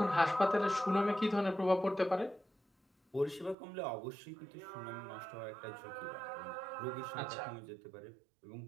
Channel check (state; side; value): drops out; left; at 3.6 s